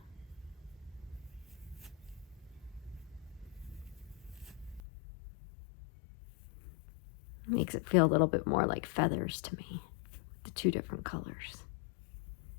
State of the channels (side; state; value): right; drops out; at 4.8 s